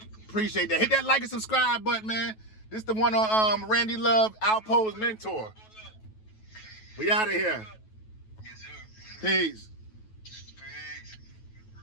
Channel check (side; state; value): right; late; 9.2 ms